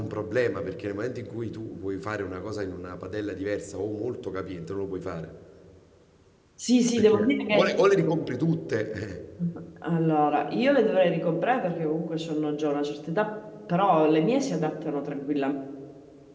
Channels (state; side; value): identical; both; correlation 1.00